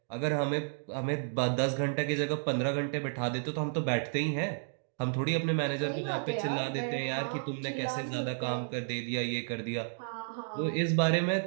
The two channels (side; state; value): left; silent; digital silence